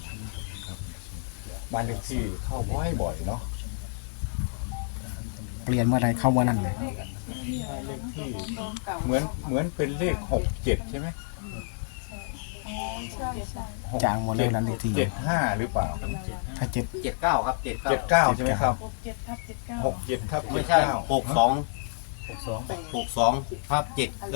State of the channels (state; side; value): silent; right; 59 dB below the other